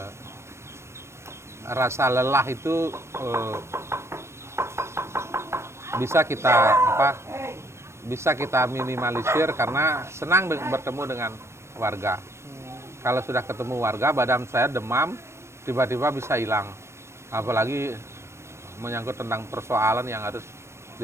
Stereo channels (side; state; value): left; late; 0.13 ms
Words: rasa lelah itu bisa kita minimalisir karena senang bertemu dengan warga. Kalau sudah ketemu warga, badan saya demam, tiba-tiba bisa hilang. Apalagi menyangkut tentang persoalan yang harus